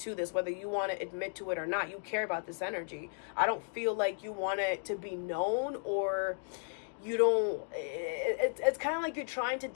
this, whether you want to admit to it or not. You care about this energy. I don't feel like you want it to be known, or you don't, it's kind of like you're trying to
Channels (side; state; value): right; silent; digital silence